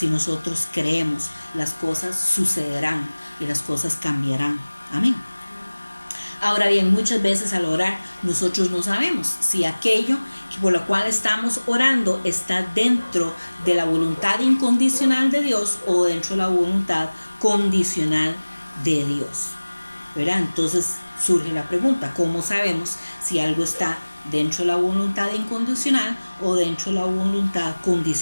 nosotros creemos, las cosas sucederán y las cosas cambiarán. Amén. Ahora bien, muchas veces al orar nosotros no sabemos si aquello por lo cual estamos orando está dentro de la voluntad incondicional de Dios o dentro de la voluntad condicional de Dios, ¿verdad? Entonces surge la pregunta, ¿cómo sabemos si algo está dentro de la voluntad incondicional o dentro de la voluntad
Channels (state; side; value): inverted; both; correlation -1.00